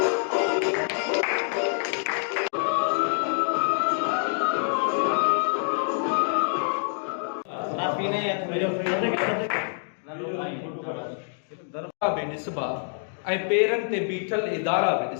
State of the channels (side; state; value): right; silent; digital silence